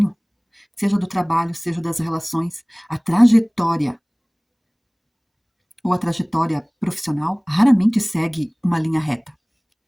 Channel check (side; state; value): both; identical; correlation 1.00